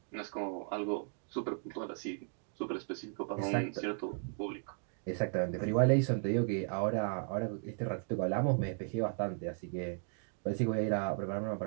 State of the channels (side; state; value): left; silent; 54 dB below the other